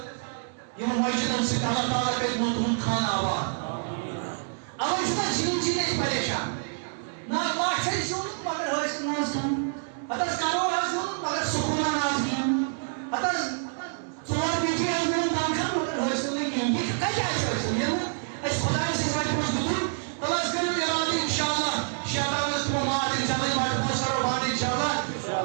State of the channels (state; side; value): silent; left; digital silence